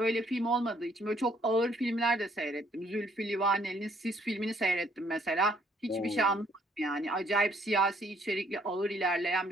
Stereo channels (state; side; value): normal; both; correlation 0.66